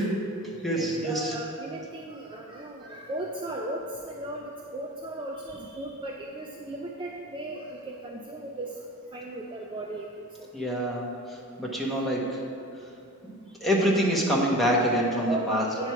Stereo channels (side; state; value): both; normal; correlation 0.37